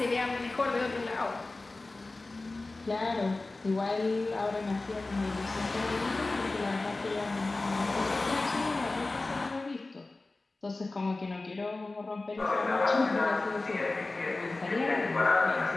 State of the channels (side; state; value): right; quieter; 3.2 dB